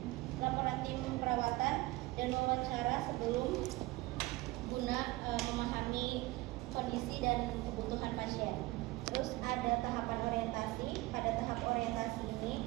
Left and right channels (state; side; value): quieter; left; 20.1 dB